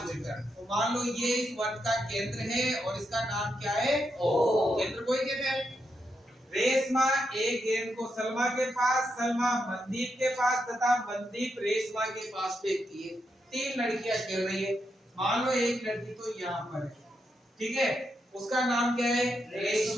मीटर। तो मान लो ये इस वर्ग का केंद्र है और इसका नाम क्या है, ओ। केंद्र को ही कहते हैं। रेशमा एक गेंद को सलमा के पास, सलमा मनदीप के पास तथा मनदीप रेशमा के पास फेंकती है। 3 लड़कियां खेल रही है। मान लो एक लड़की तो यहाँ पर है, ठीक है, उसका नाम क्या है,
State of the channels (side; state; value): both; normal; correlation 0.83